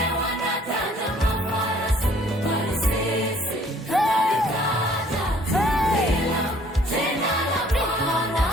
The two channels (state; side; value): normal; both; correlation 0.58